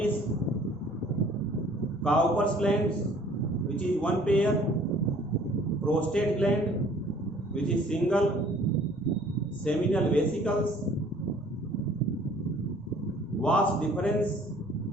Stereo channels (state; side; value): normal; both; correlation 0.55